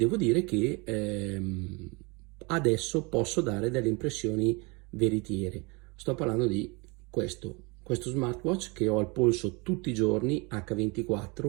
dire che adesso posso dare delle impressioni veritiere. Sto parlando di questo smartwatch che ho al polso tutti i giorni,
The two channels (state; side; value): quieter; left; 28.1 dB